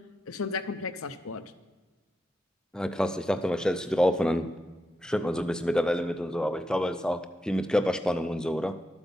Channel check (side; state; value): both; normal; correlation 0.86